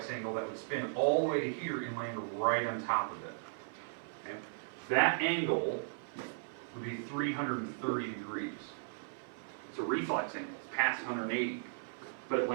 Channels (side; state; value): left; silent; 53 dB below the other